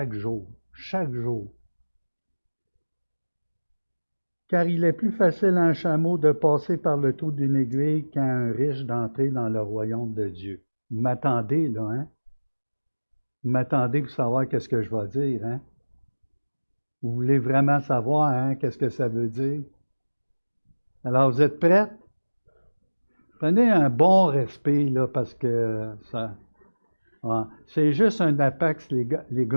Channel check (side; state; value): both; inverted; correlation -1.00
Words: jour. Chaque jour. Car il est plus facile à un chameau de passer par le trou d'une aiguille qu'à un riche d'entrer dans le royaume de Dieu. Vous m'attendez, là, hein? Vous m'attendez pour savoir qu'est-ce que je vais dire, hein? Vous voulez vraiment savoir, hein, qu'est-ce que ça veut dire? Alors, vous êtes prêts? Prenez un bon respect, là, parce que ça... Ouais, c'est juste un apax